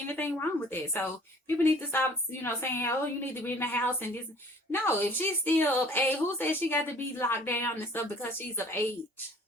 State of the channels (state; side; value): normal; both; correlation 0.51